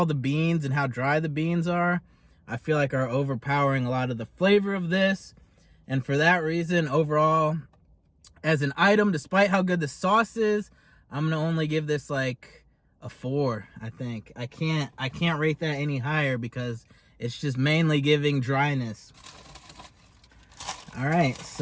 the beans and how dry the beans are, I feel like are overpowering a lot of the flavor of this. And for that reason, overall, as an item, despite how good the sauce is, I'm gonna only give this like a 4, I think. I can't rate that any higher because it's just mainly giving dryness. All right,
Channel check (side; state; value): both; identical; correlation 1.00